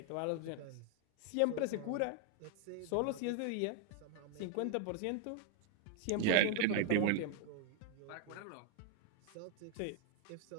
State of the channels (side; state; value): both; different; correlation 0.00